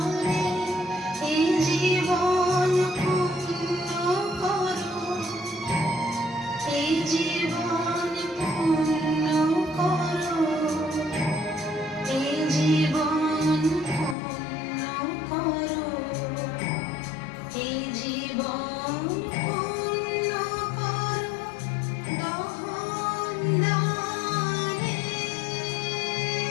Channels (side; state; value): right; drops out; at 14.2 s